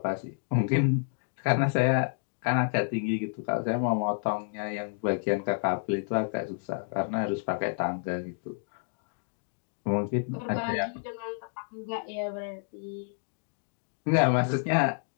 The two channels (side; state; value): right; silent; digital silence